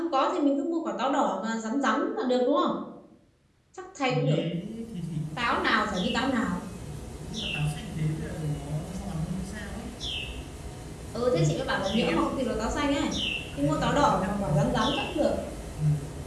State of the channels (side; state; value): both; identical; correlation 1.00